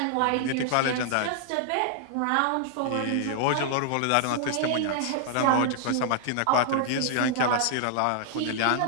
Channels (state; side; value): different; both; correlation -0.01